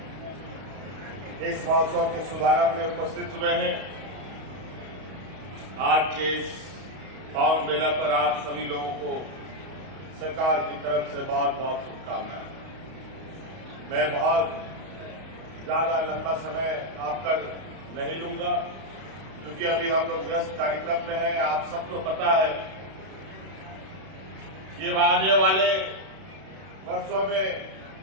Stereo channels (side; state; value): left; late; 32 ms